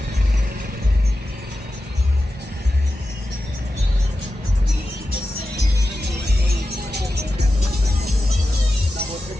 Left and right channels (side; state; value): both; normal; correlation 0.92